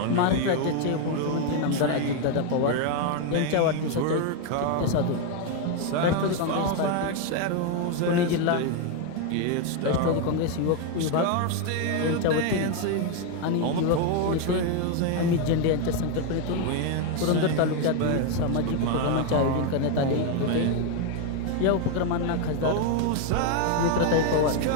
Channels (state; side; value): different; both; correlation 0.01